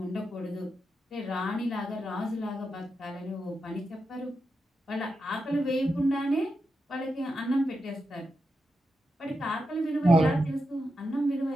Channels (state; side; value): normal; both; correlation 0.87